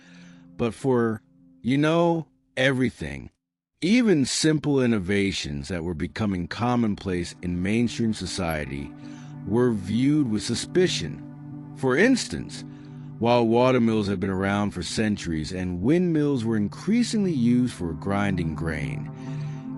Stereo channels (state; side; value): identical; both; correlation 1.00